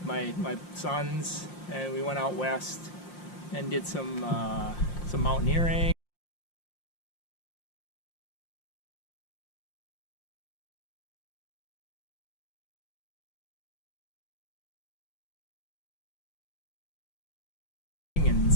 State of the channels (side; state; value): right; late; 5.7 ms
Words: my sons, and we went out west and did some mountaineering. And